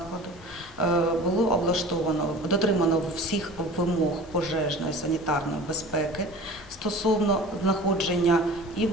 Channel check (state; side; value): normal; both; correlation 0.40